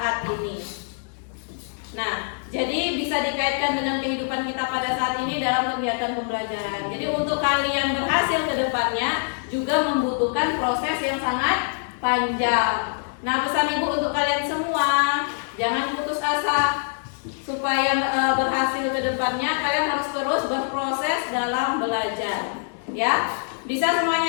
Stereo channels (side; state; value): right; silent; digital silence